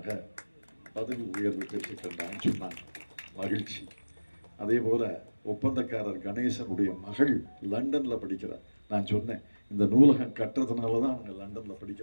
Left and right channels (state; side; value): inverted; both; correlation -1.00